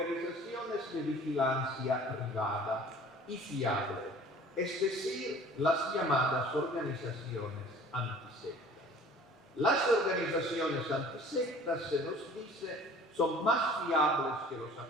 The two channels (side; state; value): both; normal; correlation 0.48